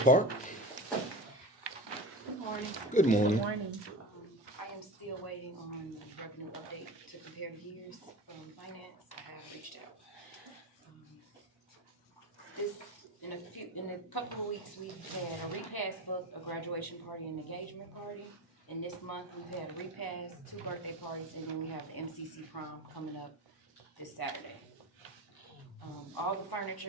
Park. Good morning. Good morning. I am still waiting on the revenue update to compare years from finance. I have reached out. In a couple of weeks, we've had a repass book, a graduation party, and engagement party. And this month, we've had a repass, 2 birthday parties, and then we have the MCC prom coming up this Saturday. All the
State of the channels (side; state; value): both; normal; correlation 0.29